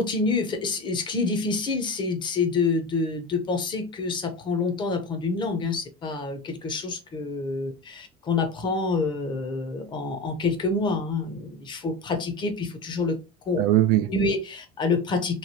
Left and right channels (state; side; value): normal; both; correlation 0.25